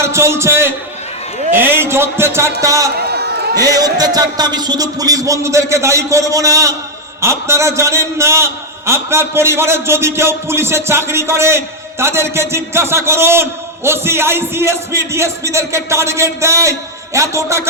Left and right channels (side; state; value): both; normal; correlation 0.01